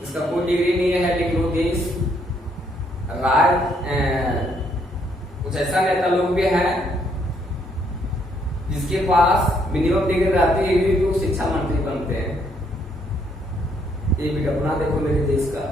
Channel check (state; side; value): normal; both; correlation 0.71